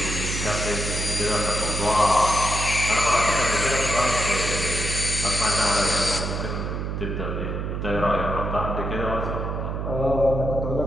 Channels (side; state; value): right; noise; hum, 3 dB below the sound